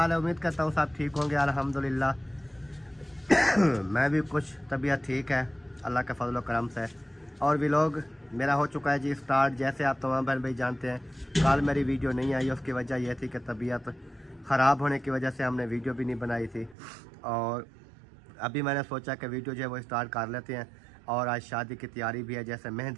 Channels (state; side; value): drops out; left; at 16.8 s